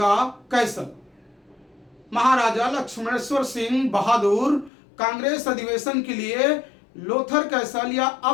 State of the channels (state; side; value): drops out; right; at 4.7 s